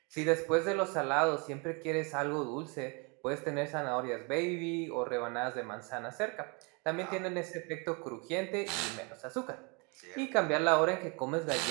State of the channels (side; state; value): left; quieter; 31.8 dB